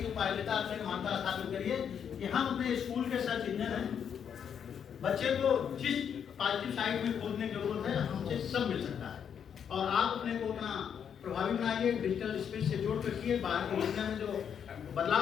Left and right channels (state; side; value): quieter; right; 8.0 dB